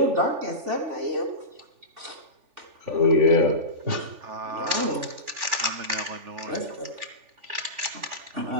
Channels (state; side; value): late; left; 3.4 ms